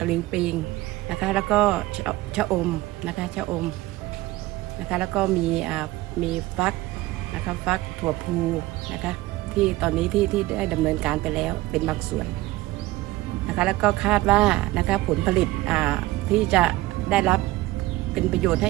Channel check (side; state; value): left; quieter; 18.1 dB